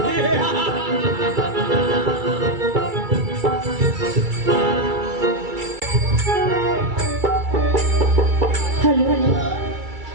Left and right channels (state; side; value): late; left; 2.3 ms